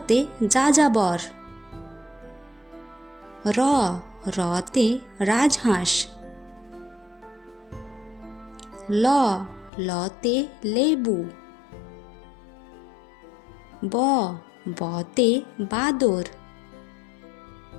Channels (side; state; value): right; drops out; at 9.7 s